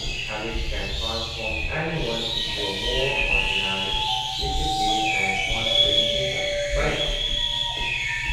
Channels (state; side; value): identical; both; correlation 1.00